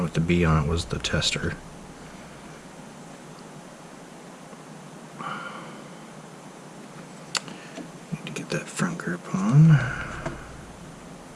with the B on it was the tester. Need to get that front grip on.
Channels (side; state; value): both; identical; correlation 1.00